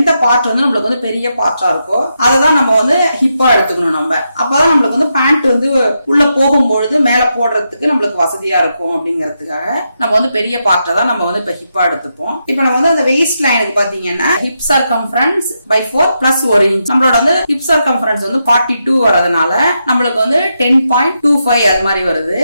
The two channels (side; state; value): both; inverted; correlation -0.84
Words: பார்ட் நம்மளுக்கு பெரிய பார்ட்டா இருக்கோ அதை தான் நம்ம ஹிப்பா எடுத்துக்கணும். நம்ம அப்பதான் நம்மளுக்கு பேண்ட் உள்ள போகும்பொழுது மேல போடுறதுக்கு நம்மளுக்கு வசதியா இருக்கும். அப்படிங்கிறதுக்காக நம்ம பெரிய பார்ட்டை தான் நம்ம இப்ப ஹிப்பா எடுத்துப்போம். இப்ப நம்ம அந்த வெயிஸ்ட் லைனுக்கு பாத்தீங்கன்னா hip circumference by 4 plus 1 inch நம்மளோட ஹிப் சர்க்கம்ஃபரன்ஸ் 42 வரதுனால நம்மளுக்கு 10.25 அது மாதிரி வருது.